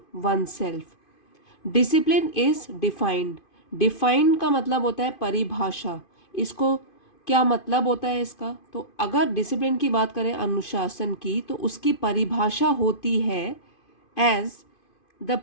oneself. Discipline is defined. Define का मतलब होता है परिभाषा। इसको क्या मतलब होता है इसका? तो अगर डिसिप्लिन की बात करें, अनुशासन की, तो उसकी परिभाषा होती है as the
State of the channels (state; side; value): late; right; 2.5 ms